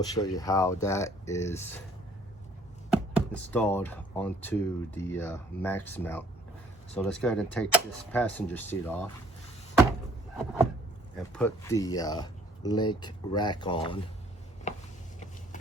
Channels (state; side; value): normal; both; correlation 0.58